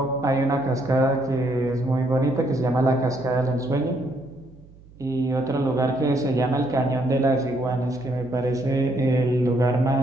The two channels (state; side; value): noise; right; hum, 24 dB below the sound